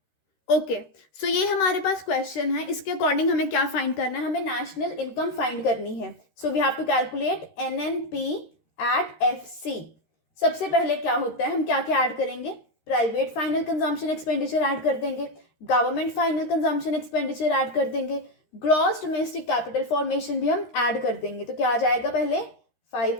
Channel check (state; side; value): late; right; 13 ms